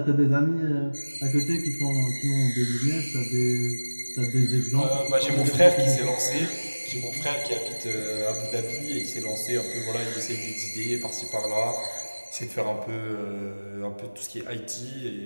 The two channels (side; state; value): both; inverted; correlation -1.00